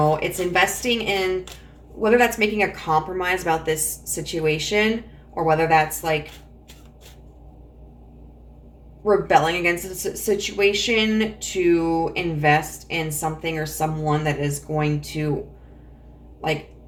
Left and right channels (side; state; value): both; identical; correlation 1.00